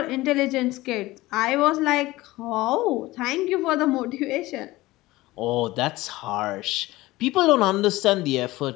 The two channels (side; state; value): right; quieter; 18.7 dB